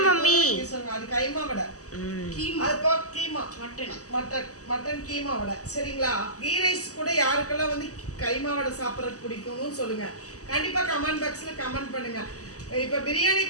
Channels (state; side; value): late; right; 0.66 ms